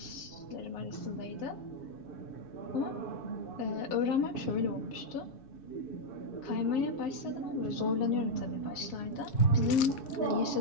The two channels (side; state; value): right; late; 7.2 ms